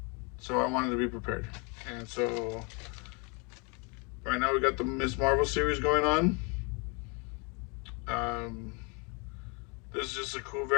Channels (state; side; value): quieter; right; 32.7 dB